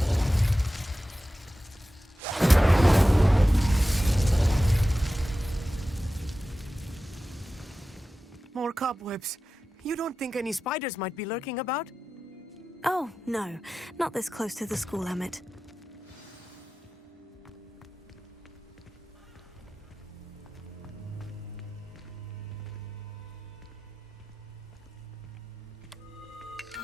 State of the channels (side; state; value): both; normal; correlation 0.94